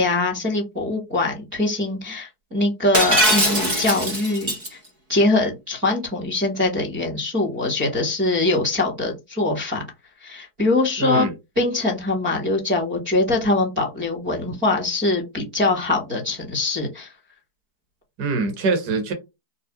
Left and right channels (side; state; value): left; late; 4.6 ms